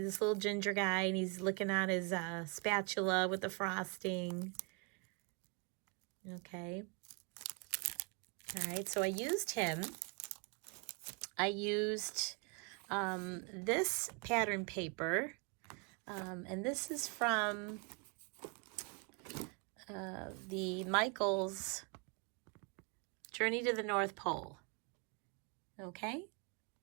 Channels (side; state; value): left; quieter; 33.1 dB